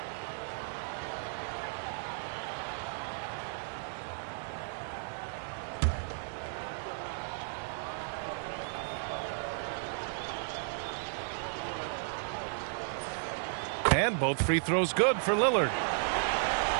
And both free throws good for Lillard.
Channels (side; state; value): left; silent; digital silence